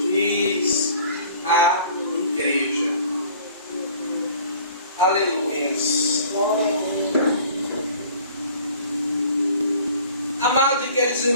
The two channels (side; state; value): both; inverted; correlation -0.50